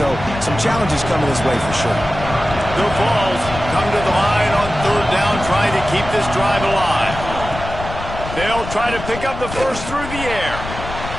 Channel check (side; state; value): left; noise; rumble, 9 dB below the sound